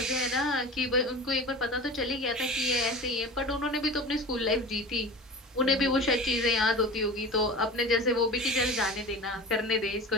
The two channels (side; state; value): both; normal; correlation 0.34